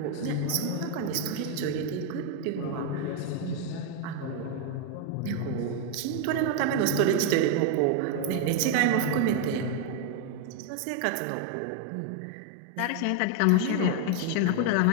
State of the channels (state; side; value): different; both; correlation 0.01